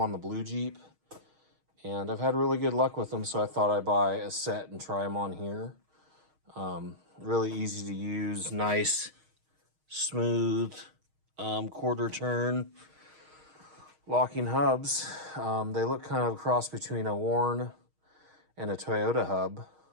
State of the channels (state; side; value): late; left; 6.4 ms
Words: the blue Jeep, and I've had really good luck with them, so I thought I'd buy a set and try them on here. Really easy to use, nice, smooth, quarter turn locking hubs. They look kind of a cross between a Warn and a Toyota hub.